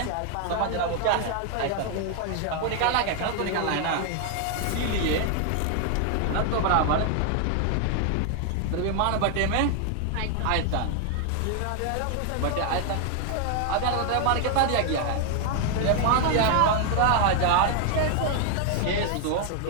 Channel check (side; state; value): both; different; correlation 0.00